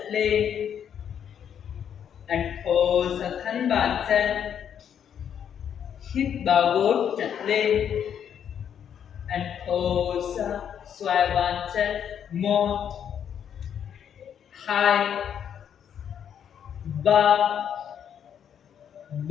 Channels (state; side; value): quieter; right; 8.7 dB